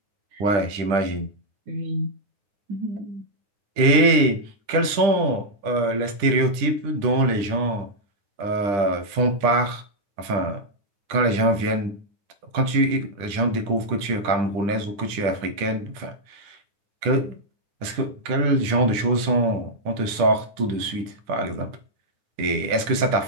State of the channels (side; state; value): left; late; 10 ms